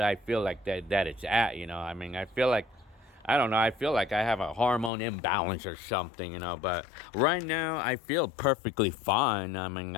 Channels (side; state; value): right; drops out; at 4.9 s